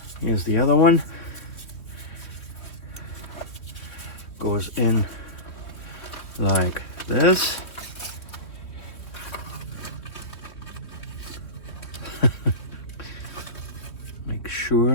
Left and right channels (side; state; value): right; late; 3.1 ms